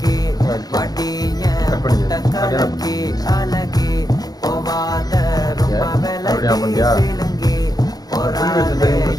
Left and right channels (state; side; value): late; right; 0.19 ms